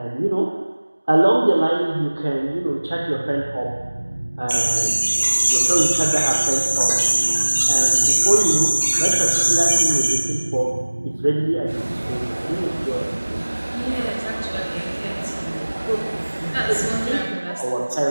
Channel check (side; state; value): both; inverted; correlation -1.00